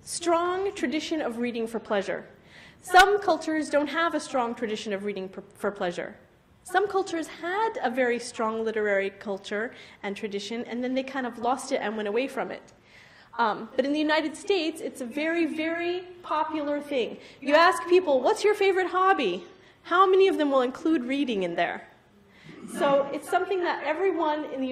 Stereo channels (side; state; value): both; identical; correlation 1.00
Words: tradition of reading for pleasure. Some cultures don't have a strong tradition of reading for pleasure. Some cultures had a very strong literary culture and tradition, and then they kind of lost it and went away from it. But in the United States, it's a very, very popular thing. You ask people, what's your favorite hobby? How many of them will include reading in there? So it's something that everyone